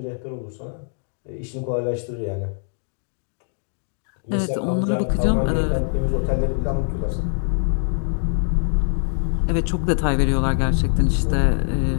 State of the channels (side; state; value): right; silent; 64 dB below the other